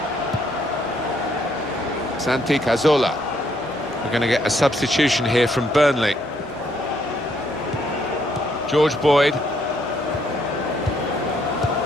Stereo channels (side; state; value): both; normal; correlation 0.71